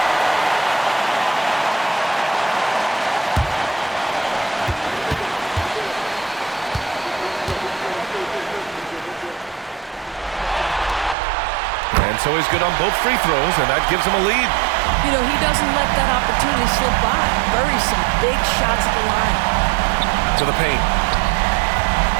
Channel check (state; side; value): drops out; left; at 11.2 s